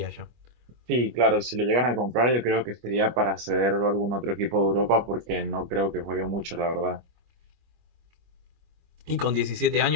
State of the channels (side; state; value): left; late; 25 ms